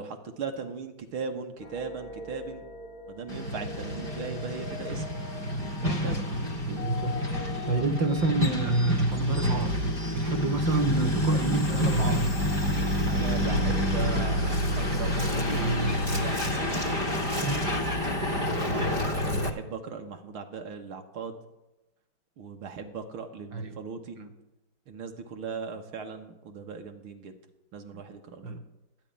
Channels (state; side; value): late; left; 4.9 ms